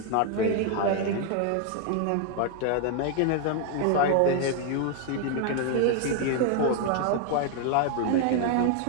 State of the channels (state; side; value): different; both; correlation 0.00